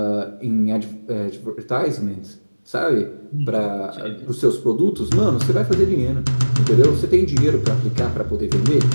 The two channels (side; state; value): both; inverted; correlation -1.00